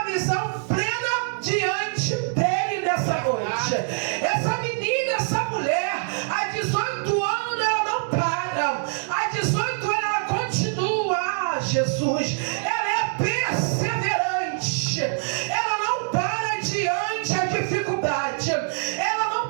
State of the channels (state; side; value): silent; left; 62 dB below the other